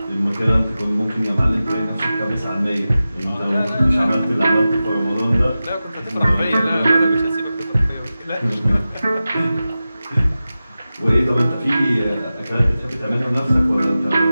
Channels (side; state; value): both; inverted; correlation -0.94